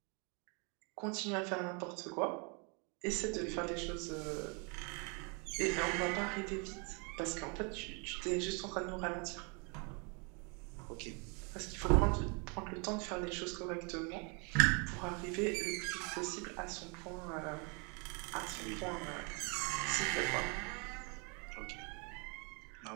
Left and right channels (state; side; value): quieter; left; 33.8 dB